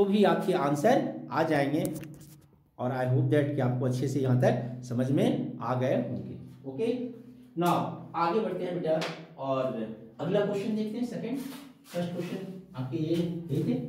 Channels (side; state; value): both; identical; correlation 1.00